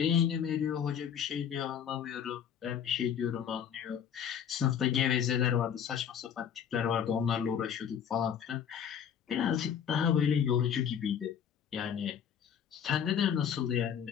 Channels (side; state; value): right; quieter; 8.4 dB